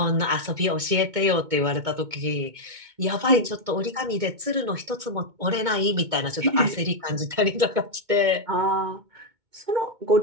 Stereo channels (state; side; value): late; left; 2.2 ms